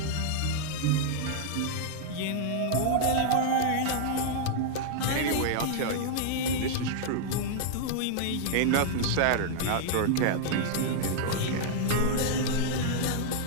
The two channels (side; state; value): both; different; correlation -0.01